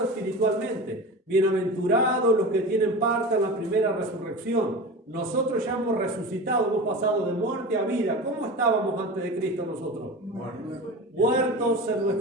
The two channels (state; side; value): normal; both; correlation 0.31